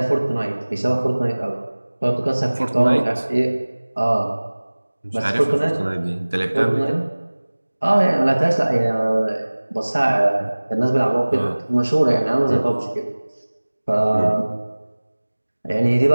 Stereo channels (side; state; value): both; inverted; correlation -1.00